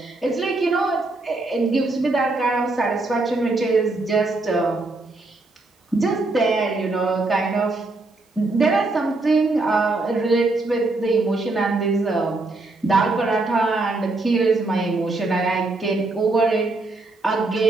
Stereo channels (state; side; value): quieter; left; 3.2 dB